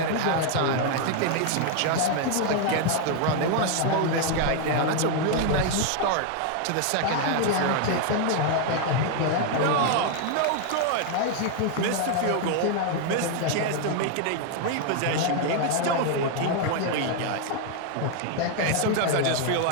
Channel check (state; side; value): different; both; correlation 0.00